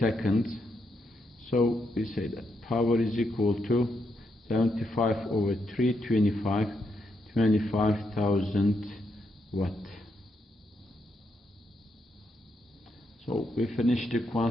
So we say that power is equal to 75 over 3, 25,000 watt. So we finished the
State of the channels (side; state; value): both; normal; correlation 0.80